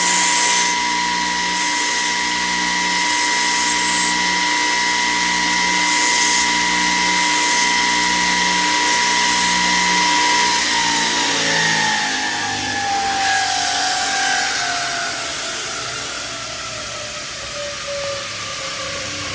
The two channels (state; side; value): identical; both; correlation 1.00